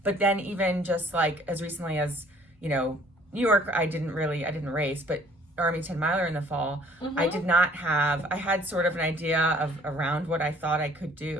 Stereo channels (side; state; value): both; normal; correlation 0.57